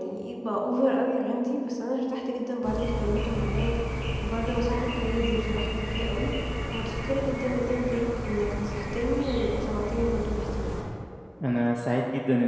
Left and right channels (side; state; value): both; identical; correlation 1.00